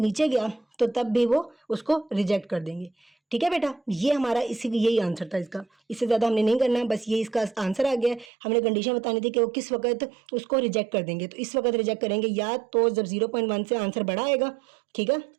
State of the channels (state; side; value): drops out; left; at 8.3 s